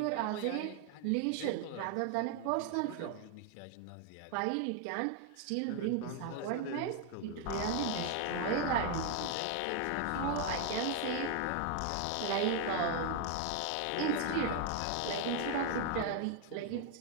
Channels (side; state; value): both; different; correlation 0.00